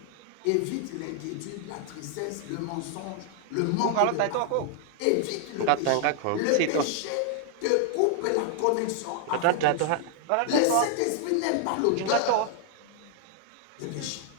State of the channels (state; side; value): different; both; correlation 0.00